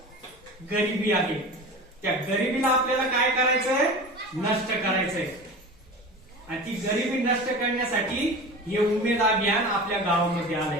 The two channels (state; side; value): normal; both; correlation 0.33